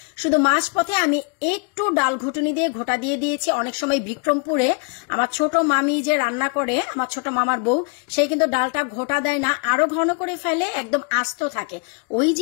শুধু মাঝপথে আমি একটু ডাল ঘুটুনি দিয়ে ঘোটা দিয়ে দিয়েছি। অনেক সময় বিক্রমপুরে আমার ছোট মামি যে রান্না করে, আমার ছোট মামার বউ, সে কিন্তু ডালটা ঘোটা দেয় না, আরো ঘন করে ফেলে, একদম আস্ত থাকে। ওই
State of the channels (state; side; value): quieter; right; 35.8 dB